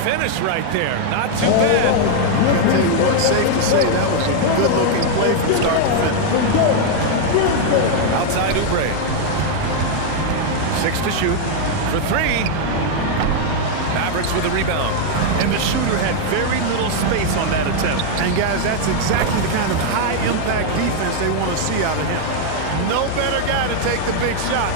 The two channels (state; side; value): different; both; correlation 0.00